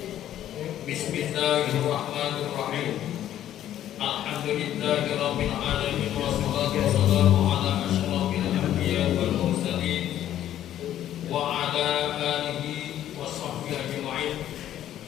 Bismillahirrahmanirrahim. Alhamdulillahi rabbil alamin wassalatu wassalamu ala asyrafil anbiya'i wal mursalin wa ala alihi washabbihi ajma'in.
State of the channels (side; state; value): right; quieter; 11.8 dB